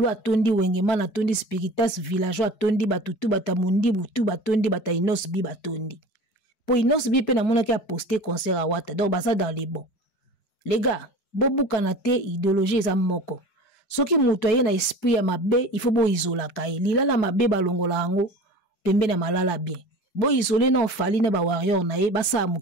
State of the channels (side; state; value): right; late; 5.0 ms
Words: atondi wengeman atondi spiritas villageois atondi batutu batamundi butu batondi bata inos bi batondi. Po inos bi pe na mona ki a posté concert à Wata. Donc basa dans les bons. Les gars, bobu kanate idéologie za moko. Soki mutu aye na esprit ya mabe, il faut bo isola kai. Lila la mabe balongola ango pembe na malala bien. Bo isolé na Fali na ba warrior na ye basa